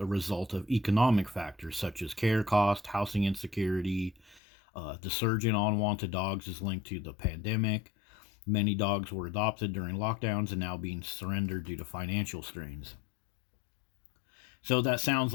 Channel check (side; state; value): right; drops out; at 4.4 s